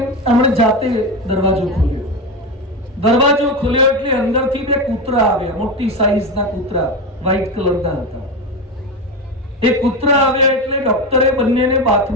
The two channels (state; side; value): normal; both; correlation 0.18